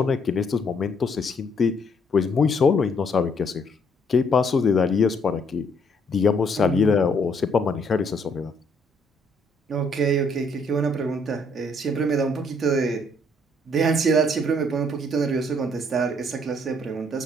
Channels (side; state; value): both; normal; correlation 0.67